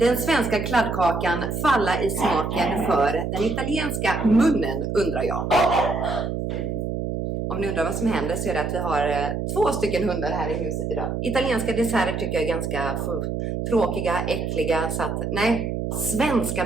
svenska kladdkakan falla i smaken för den italienska munnen, undrar jag. Om ni undrar vad som händer så är det att vi har 2 stycken hundar här i huset idag. Italienska desserter tycker jag är ganska tråkiga, äckliga. Så att, nej, svenska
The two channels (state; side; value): noise; right; hum, 3 dB below the sound